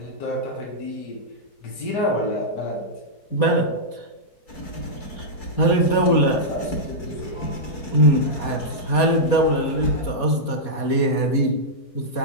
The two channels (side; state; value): right; late; 4.2 ms